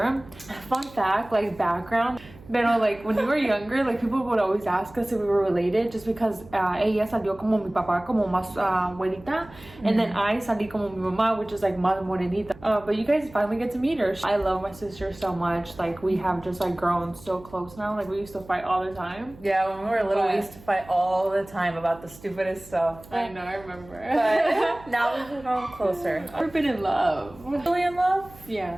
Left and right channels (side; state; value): right; noise; hum, 21 dB below the sound